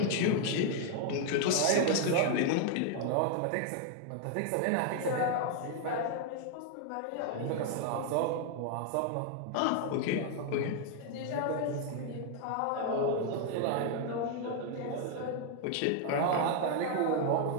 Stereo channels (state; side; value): different; both; correlation 0.00